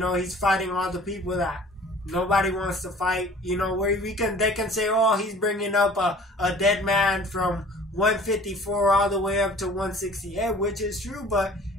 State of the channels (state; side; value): normal; both; correlation 0.48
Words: he's fighting all the people that nobody wants to fight. You know, where they can say, oh, he's bringing up a dead man from 154 all the way up to 168, which is true. But